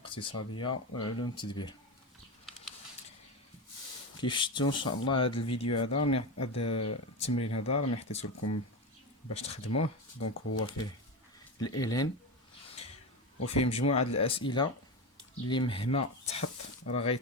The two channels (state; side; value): normal; both; correlation 0.18